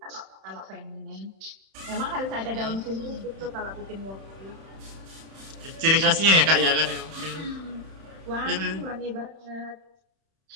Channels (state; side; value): late; left; 31 ms